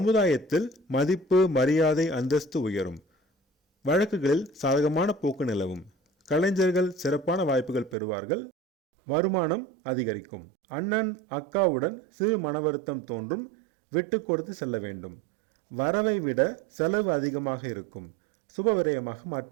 மதிப்பு மரியாதை அந்தஸ்து உயரும். வழக்குகளில் சாதகமான போக்கு நிலவும். கலைஞர்கள் சிறப்பான வாய்ப்புகள் பெறுவார்கள். வருமானம் அதிகரிக்கும். அண்ணன் அக்காவுடன் சிறு மன வருத்தம் தோன்றும். விட்டு கொடுத்து செல்ல வேண்டும். வரவை விட செலவு அதிகமாக இருக்கும். சுப விரயமாக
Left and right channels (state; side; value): drops out; left; at 8.0 s